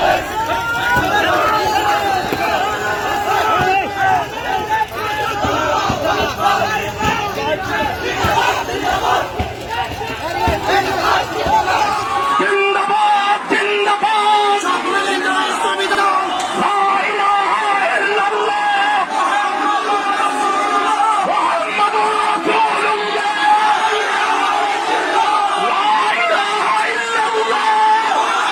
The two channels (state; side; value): identical; both; correlation 1.00